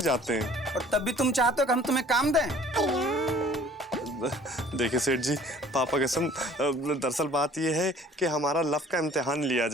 जाते हैं। और तब भी तुम चाहते हो कि हम तुम्हें काम दें? देखिए सेठ जी पापा कसम, दरअसल बात यह है कि हमारा लव का इम्तिहान लिया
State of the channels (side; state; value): both; normal; correlation 0.52